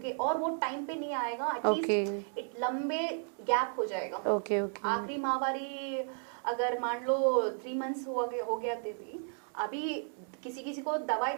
और वो टाइम पे नहीं आएगा, एटलीस्ट लंबे गैप हो जाएगा. ओके. आखिरी माहवारी अगर मान लो 3 months हो गया थे भी, अभी किसी को दवाई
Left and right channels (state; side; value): silent; left; 55 dB below the other